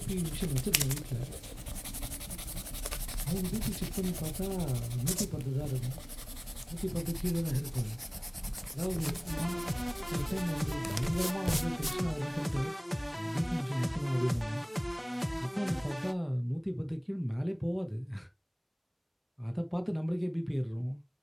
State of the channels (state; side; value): identical; both; correlation 1.00